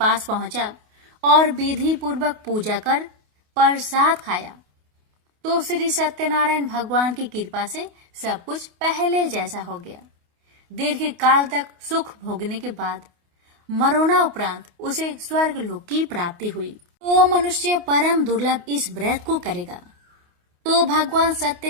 पहुंचा और विधि पूर्वक पूजा कर प्रसाद खाया, तो श्री सत्यनारायण भगवान की कृपा से सब कुछ पहले जैसा हो गया। दीर्घ काल तक सुख भोगने के बाद मरोना उपरांत उसे स्वर्ग लोक की प्राप्ति हुई। तो मनुष्य परम दुर्लभ इस व्रत को करेगा तो भगवान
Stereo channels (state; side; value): late; left; 28 ms